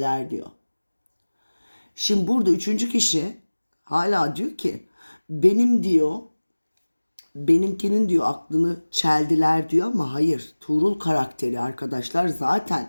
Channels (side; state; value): both; inverted; correlation -1.00